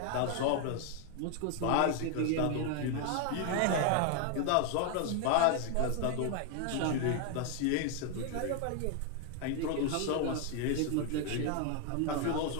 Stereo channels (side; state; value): both; different; correlation 0.00